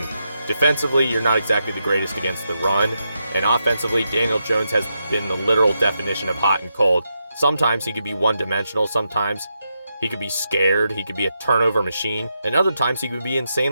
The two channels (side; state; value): both; inverted; correlation -0.84